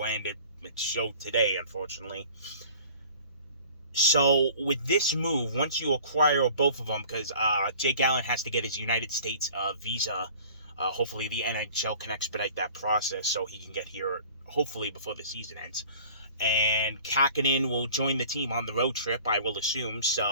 and it showed today, unfortunately. So, with this move, once you acquire both of them, because Jake Allen has to get his United States visa, hopefully the NHL can expedite that process so he can get here, hopefully before the season ends. and Kakkonen will join the team on the road trip, I will assume.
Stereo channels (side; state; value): both; inverted; correlation -0.46